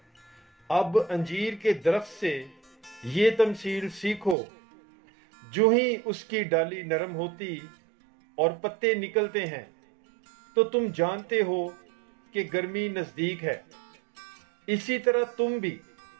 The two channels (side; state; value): left; drops out; at 4.4 s